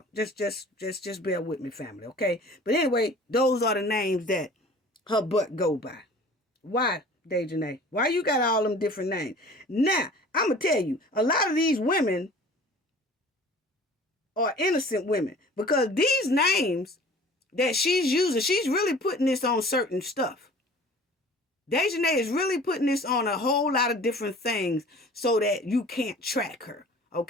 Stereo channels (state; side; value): normal; both; correlation 0.46